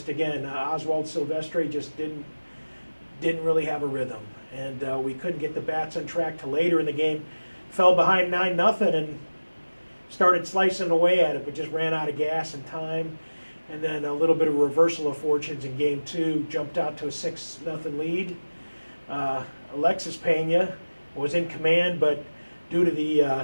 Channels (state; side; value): inverted; both; correlation -1.00